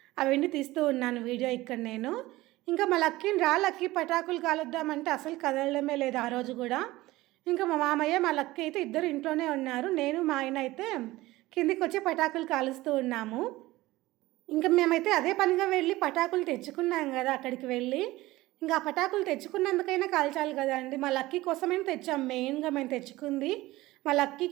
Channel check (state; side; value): quieter; left; 18.3 dB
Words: అవన్నీ తీస్తూ ఉన్నాను వీడియో ఇక్కడ నేను. ఇంకా మా లక్కీని లక్కీ పటాకులు కాలుద్దామంటే అసలు కదలడమే లేదు ఆ రోజు కూడా. ఇంకా మా మామయ్య మా లక్కీ అయితే ఇద్దరు ఇంట్లోనే ఉన్నారు, నేను మా ఆయన అయితే కిందికి వచ్చి పటాకులు కాలుస్తూ ఉన్నాము. ఇంకా మేమైతే అదే పనిగా వెళ్ళి పటాకులు తెచ్చుకున్నాం కదా అక్కడికి వెళ్ళి. ఇంకా ఆ పటాకులు తెచ్చుకున్నందుకైనా కాల్చాలి కదా అండి. మా లక్కీ కోసమే తెచ్చాం, మెయిన్గా మేము తెచ్చుకుంది మా